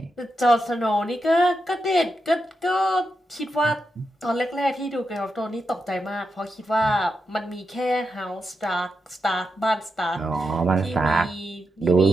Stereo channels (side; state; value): both; normal; correlation 0.86